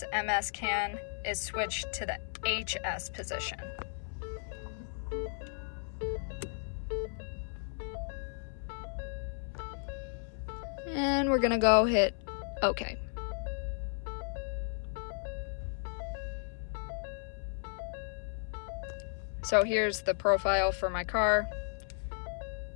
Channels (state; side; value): silent; right; 55 dB below the other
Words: CAN is switched to the HS position. And we're gonna go hit OK. So here's the profile for my car.